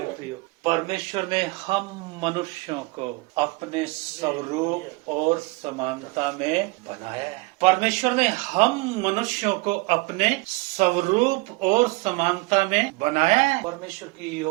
प्रियो, परमेश्वर ने हम मनुष्यों को अपने स्वरूप और समानता में बनाया है। परमेश्वर ने हम मनुष्यों को अपने स्वरूप और समानता में बनाया है। परमेश्वर की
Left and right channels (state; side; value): quieter; left; 24.5 dB